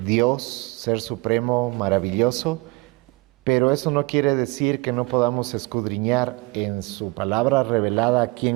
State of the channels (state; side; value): quieter; left; 24.7 dB